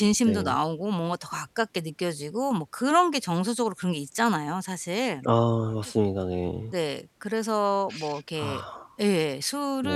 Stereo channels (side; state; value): both; identical; correlation 1.00